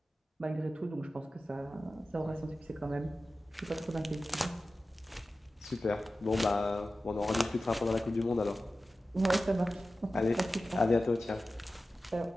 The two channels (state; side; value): normal; both; correlation 0.94